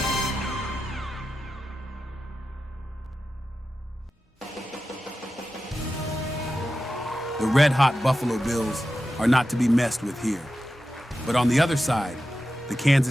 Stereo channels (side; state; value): both; normal; correlation 0.92